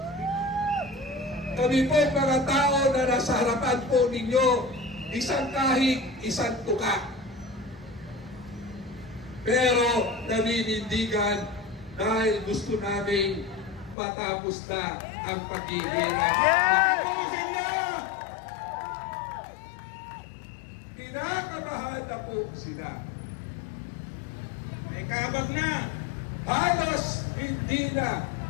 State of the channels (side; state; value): right; drops out; at 14.0 s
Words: Kami po mga tao na nasa harapan po ninyo, isang kahig, isang tuka. Pero naninindigan dahil gusto namin matapos na ang paghihirap. Kinakabahan na po sila. May kabag na. Halos hindi na